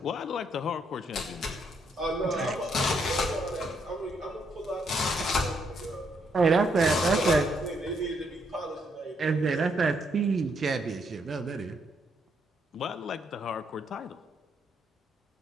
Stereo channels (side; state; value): both; normal; correlation 0.74